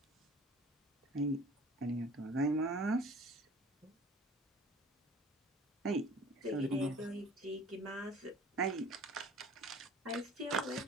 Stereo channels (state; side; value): normal; both; correlation 0.47